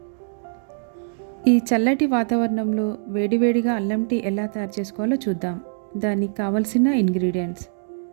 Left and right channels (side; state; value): left; silent; digital silence